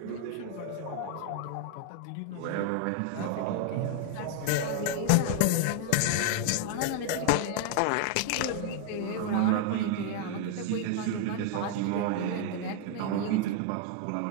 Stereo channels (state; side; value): different; both; correlation 0.00